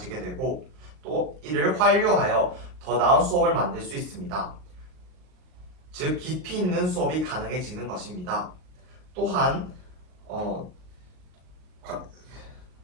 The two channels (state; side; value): late; left; 38 ms